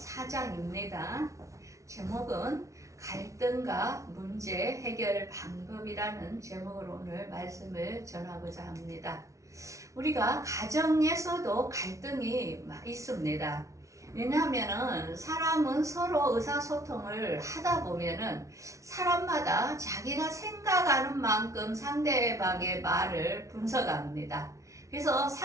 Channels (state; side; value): late; left; 0.15 ms